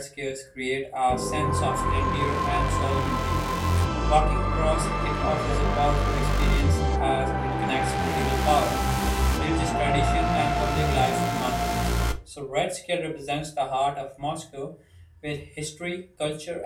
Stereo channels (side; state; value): both; identical; correlation 1.00